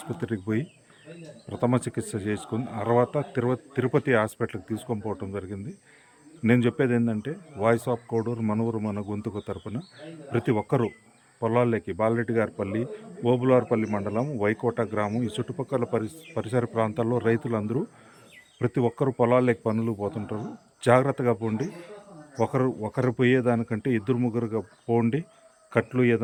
పోయి ప్రథమ చికిత్స చేసుకుని తర్వాత తిరుపతి హాస్పిటల్కి తీసుకొని పోవటం జరిగింది. నేను చెప్పేది ఏంటంటే, వాయిస్ ఆఫ్ కోడూరు, మన ఊరు మన గొంతుకు తరపున ప్రతి ఒక్కరూ పొలాల్లోకి బాలరెడ్డి గారిపల్లి, ఓబులార్పల్లి మండలం, వైకోట గ్రామం, ఈ చుట్టుపక్కల పరిసర ప్రాంతాల్లో రైతులందరూ ప్రతి ఒక్కరు పొలాల్లోకి పనులు పోతుంటారు. జాగ్రత్తగా పోండి. ఒకరు పోయేదానికంటే ఇద్దరు ముగ్గురుగా పోండి. కట్లు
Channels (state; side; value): identical; both; correlation 1.00